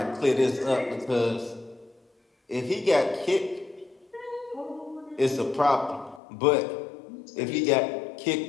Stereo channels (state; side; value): drops out; right; at 6.2 s